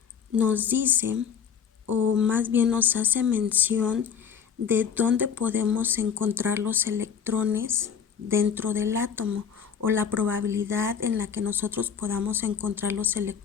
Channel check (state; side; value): quieter; right; 7.3 dB